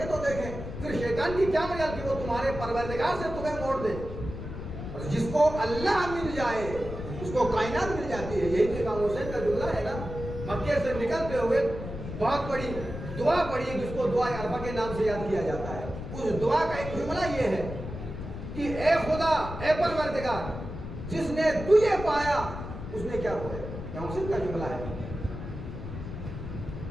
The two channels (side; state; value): left; noise; rumble, 8 dB below the sound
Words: تو دیکھیں. پھر شیطان کی کیا مجال کہ وہ تمہارے پروردگار سے تمہیں موڑ دے. اور جس کو اللہ مل جائے اس کو کائنات مل جاتی ہے. یہی تو امام حسین کا جملہ ہے نا. مکے سے نکلتے ہوئے بہت بڑی دعا پڑھی جس کو دعا عرفہ کے نام سے یاد کیا جاتا ہے. اس دعا کا ایک جملہ یہ ہے کہ اے خدا اے پروردگار جس نے تجھے پایا اس نے کیا کھویا. امام حسین کا جملہ ہے.